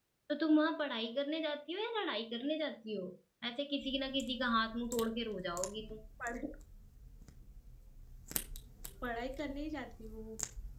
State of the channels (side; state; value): both; identical; correlation 1.00